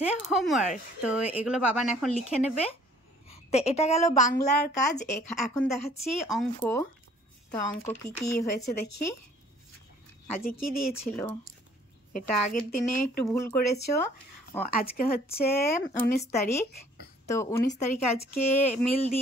হোমওয়ার্ক। তো এগুলো বাবান এখন লিখে নেবে। তো এটা গেল বাংলার কাজ। এখন দেখাচ্ছি অঙ্ক। তো অঙ্ক কি কি হয়েছে দেখি। আজকে কি দিয়েছিল? এটা আগের দিনে একটু ভুল করেছো। আজকে হচ্ছে 19 তারিখ। তো 19 তারিখে আজকে মিল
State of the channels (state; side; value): normal; both; correlation 0.57